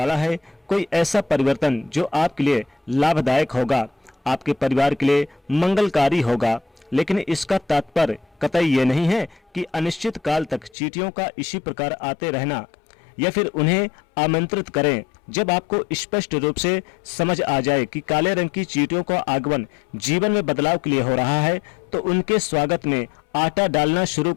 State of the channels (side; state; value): right; drops out; at 10.7 s